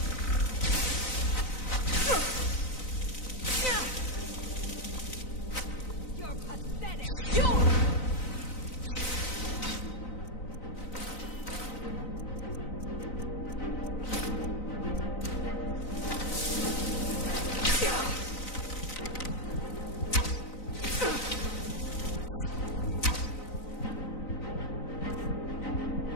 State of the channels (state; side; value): late; right; 3.9 ms